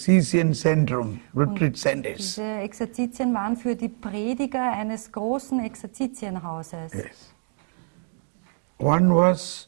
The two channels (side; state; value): left; silent; digital silence